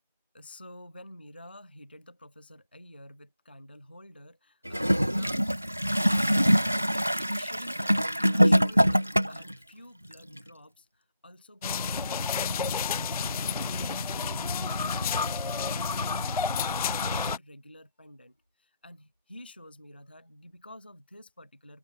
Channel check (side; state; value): both; inverted; correlation -0.84